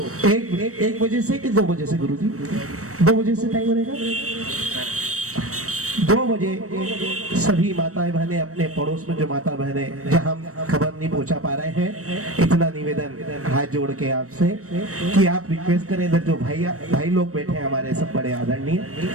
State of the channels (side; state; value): left; late; 0.65 ms